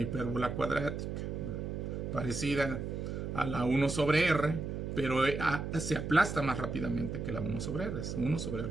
hipérbola cuadrática, ¿verdad?, parecida a la 1 sobre R, pero se aplasta más rápidamente que la 1 sobre R. Es 1 sobre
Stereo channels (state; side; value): noise; right; hum, 4 dB below the sound